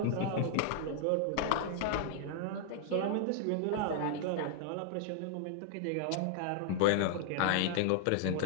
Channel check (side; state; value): both; different; correlation 0.00